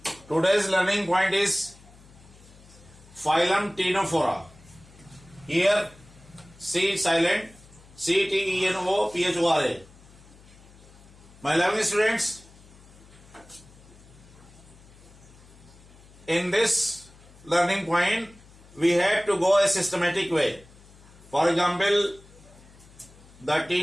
Today's learning point is phylum Ctenophora. Here, C silent, Ctenophora. My lovely students, in this learning point, we have to go a systematic way. For example, the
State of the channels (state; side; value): noise; left; hum, 24 dB below the sound